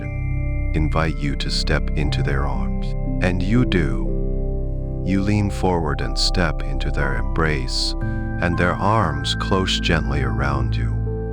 invite you to step into their arms. And you do. You lean forward and step into their embrace, and their arms close gently around you.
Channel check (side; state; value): both; identical; correlation 1.00